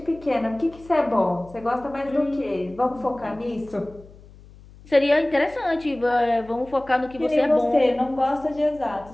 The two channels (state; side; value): noise; left; hum, 22 dB below the sound